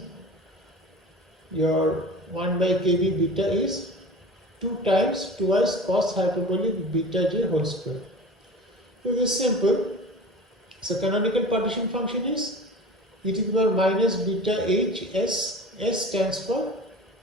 your 1 by kb beta is 2 times twice cos hyperbolic beta j whole square. So this is simple. So canonical partition function is e to the power minus beta h s. S stands for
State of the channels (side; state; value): both; normal; correlation 0.36